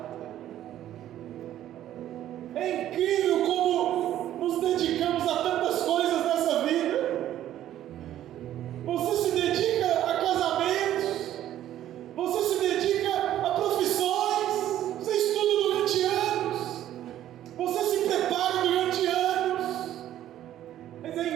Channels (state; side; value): quieter; left; 12.2 dB